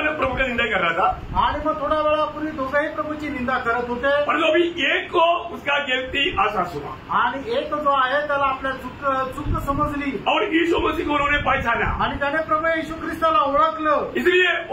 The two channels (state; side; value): identical; both; correlation 1.00